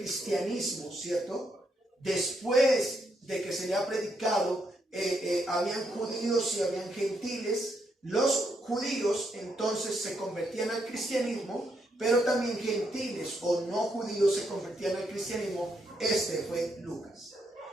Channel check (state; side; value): normal; both; correlation 0.78